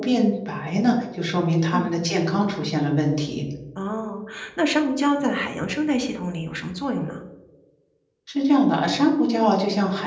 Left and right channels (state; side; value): identical; both; correlation 1.00